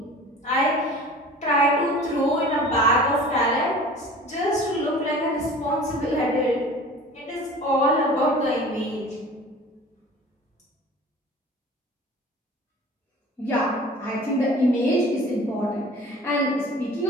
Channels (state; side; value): normal; both; correlation 0.43